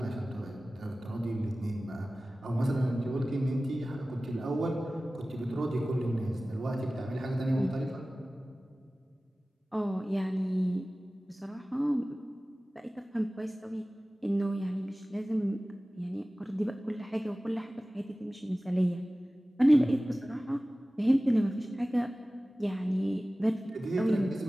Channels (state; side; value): normal; both; correlation 0.97